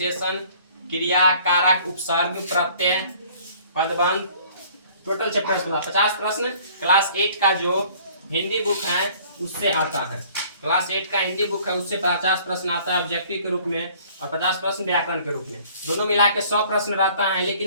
क्रिया, कारक, उपसर्ग, प्रत्यय, पदबंध, टोटल चैप्टर 50 प्रश्न क्लास 8 का जो हिंदी बुक है उससे आता है। क्लास 8 का हिंदी बुक है उससे 50 प्रश्न आता है ऑब्जेक्टिव के रूप में, और 50 प्रश्न व्याकरण के रूप में। दोनों मिला के 100 प्रश्न रहता है,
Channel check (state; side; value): inverted; both; correlation -0.54